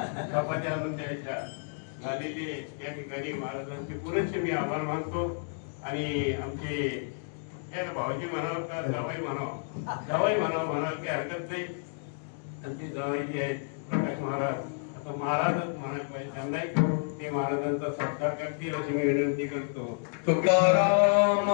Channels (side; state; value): right; silent; digital silence